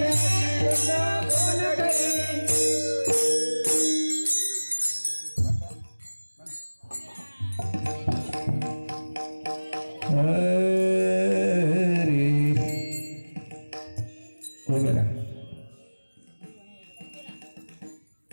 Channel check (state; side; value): inverted; both; correlation -1.00